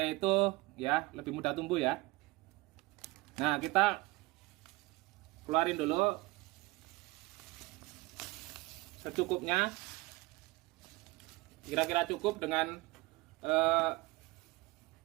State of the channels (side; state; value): left; quieter; 22.1 dB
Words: itu ya lebih mudah tumbuh ya. Nah, kita keluarin dulu secukupnya, kira-kira cukup dengan